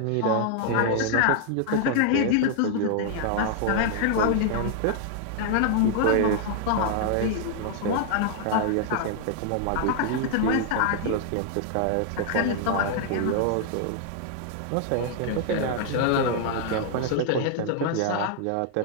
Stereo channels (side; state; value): both; different; correlation 0.00